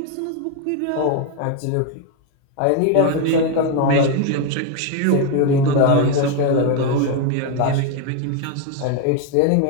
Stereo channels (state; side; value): different; both; correlation 0.01